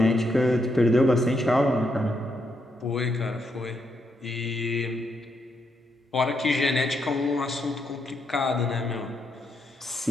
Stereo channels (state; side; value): normal; both; correlation 0.79